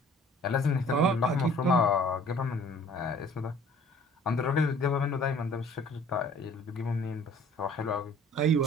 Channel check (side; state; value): both; normal; correlation 0.52